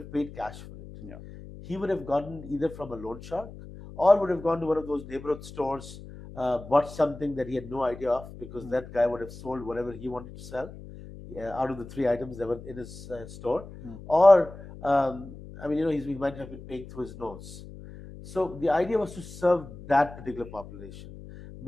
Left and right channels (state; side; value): noise; left; hum, 15 dB below the sound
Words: paid cash for it. Yeah. He would have gotten either from a loan shark or would have gone to one of those neighborhood stores, bought something that he had no idea of because Mm. that guy would have sold whatever he wanted to sell out of the three items that were in his store. Mm. Or, I mean, he might have been paying through his nose. So the idea was to serve that particular population